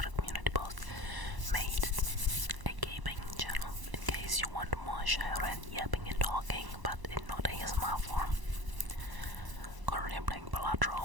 the community post, made a gaming channel in case you want more Shyaren yapping and talking, but in not ASMR form. Currently I'm playing Elgato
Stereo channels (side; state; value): left; late; 1.0 ms